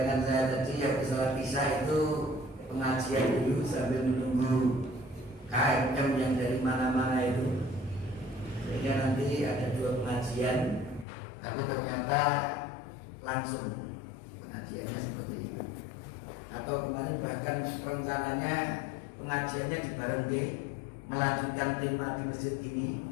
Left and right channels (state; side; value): drops out; right; at 11.1 s